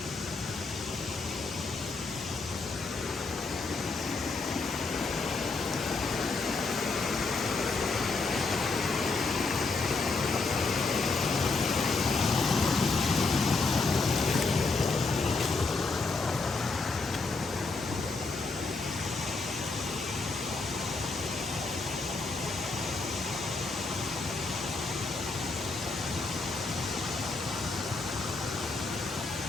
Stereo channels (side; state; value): right; quieter; 3.9 dB